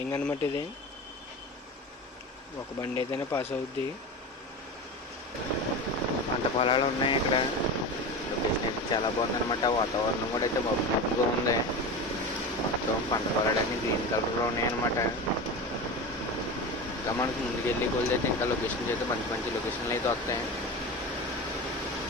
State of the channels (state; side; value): normal; both; correlation 0.27